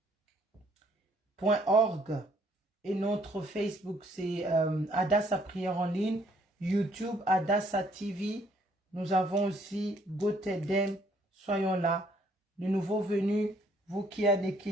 Et notre Facebook, c'est Adassa Prière en ligne. YouTube, Adassa TV. Nous avons aussi GoTedem. Soyons là. Les nouveaux venus, vous qui avez des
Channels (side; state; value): both; normal; correlation 0.64